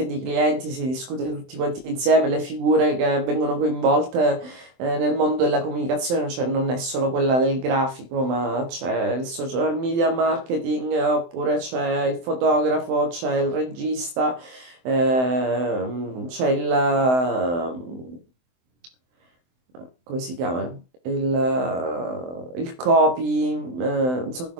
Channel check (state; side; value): late; left; 23 ms